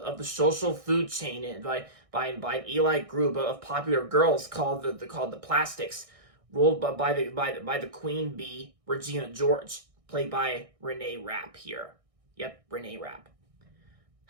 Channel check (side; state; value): left; late; 1.6 ms